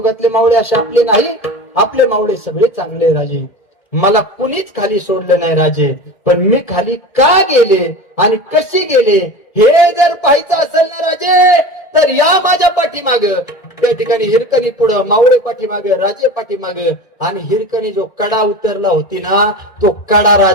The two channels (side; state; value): right; late; 1.7 ms